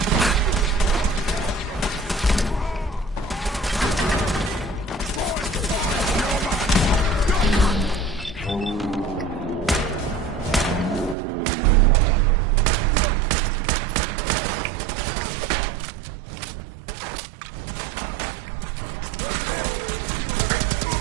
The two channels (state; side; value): drops out; left; at 11.2 s